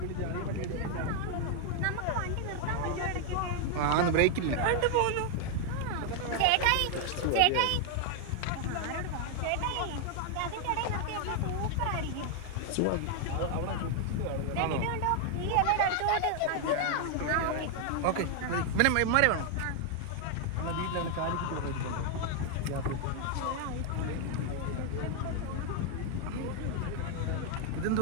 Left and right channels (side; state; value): both; different; correlation 0.00